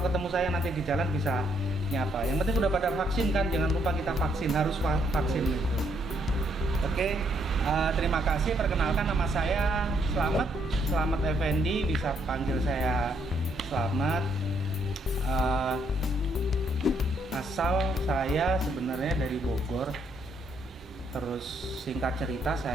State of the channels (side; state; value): both; normal; correlation 0.72